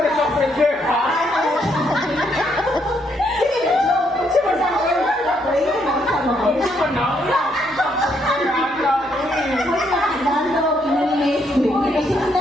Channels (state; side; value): normal; both; correlation 0.73